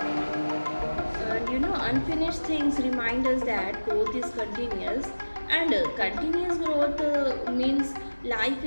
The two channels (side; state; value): both; inverted; correlation -1.00